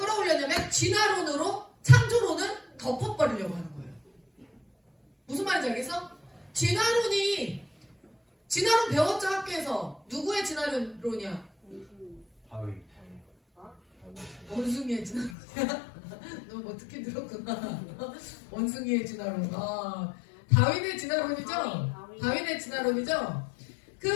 진화론으로 창조론을 덮어버리려고 하는 거예요. 무슨 말인지 알겠어? 진화론 배웠죠 학교에서. 누구의 진화론이야? 원숭이의 진화론이야? 너 뭐 듣긴 들었구나. 원숭이의 진화론. 다윈의 진화론이죠? 다윈의 진화론이죠?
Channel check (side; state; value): right; drops out; at 15.4 s